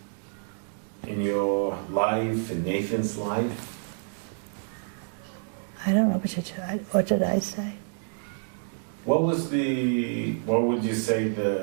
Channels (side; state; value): left; silent; 59 dB below the other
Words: in your life, in Nathan's life? I don't know what did I say? What would you say